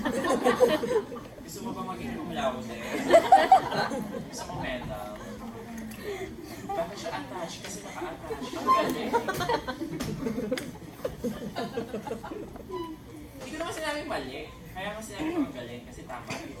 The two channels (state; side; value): identical; both; correlation 1.00